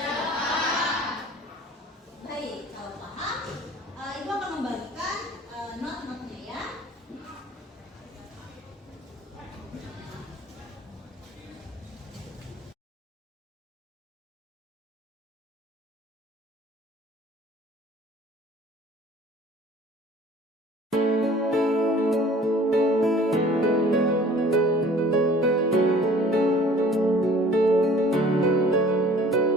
Baik, kalau paham, Ibu akan membagikan not-notnya ya.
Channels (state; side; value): normal; both; correlation 0.50